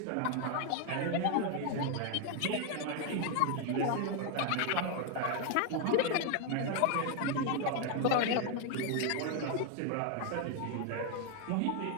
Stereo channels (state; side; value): different; both; correlation 0.01